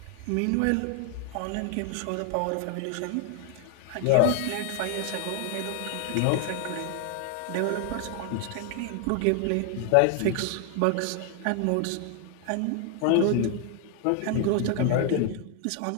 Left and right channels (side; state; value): both; different; correlation 0.00